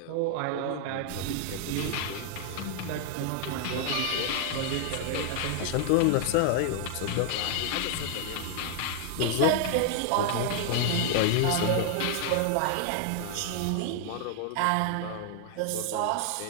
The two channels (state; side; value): different; both; correlation 0.00